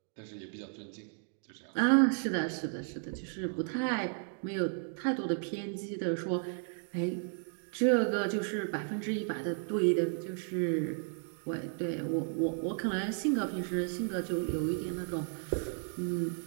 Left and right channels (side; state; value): left; silent; 55 dB below the other